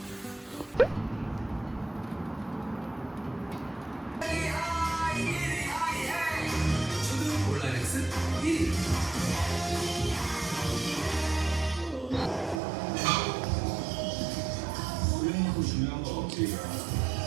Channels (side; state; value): left; drops out; at 12.6 s